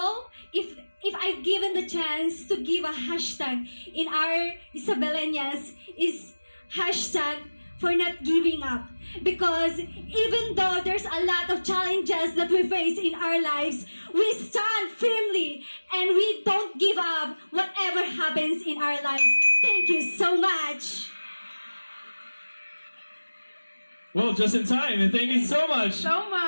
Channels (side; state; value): both; inverted; correlation -1.00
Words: if I've given the chance to give a hashtag in our Isabelenias is hashtag for not giving up. Because even though there's a lot of challenges that we face in our lives, we stand firmly and we don't give up whatever happens in our lives. Thank you so much. Well, just in time, and thank you so much. So